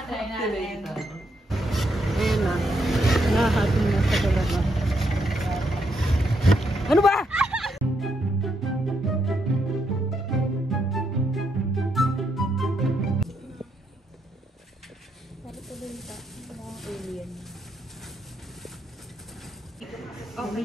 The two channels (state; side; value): normal; both; correlation 0.78